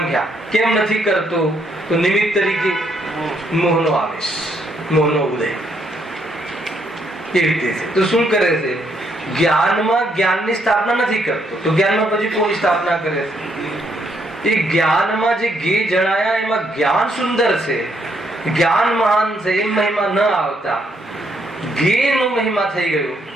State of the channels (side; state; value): both; normal; correlation 0.73